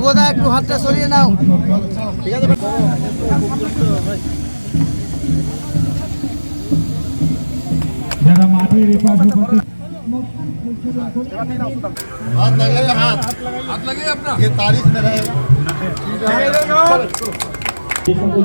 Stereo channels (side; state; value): both; inverted; correlation -1.00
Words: একটু হাতটা সরিয়ে নাও, ঠিক আছে? যারা মাটির এপাশে हाथ लगाइए, हाथ लगाइए अपना, ये तारीफ में रहेगा। যে সকল